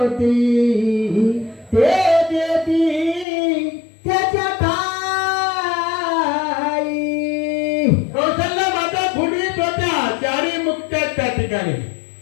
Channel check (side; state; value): right; drops out; at 3.2 s